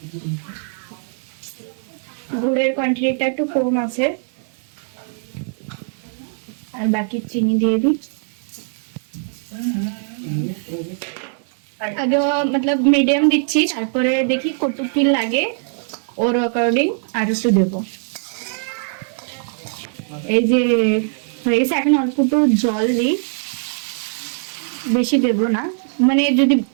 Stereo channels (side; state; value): left; silent; digital silence